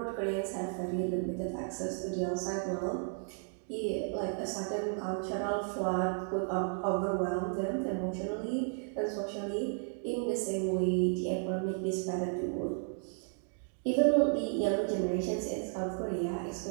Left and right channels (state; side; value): silent; left; 55 dB below the other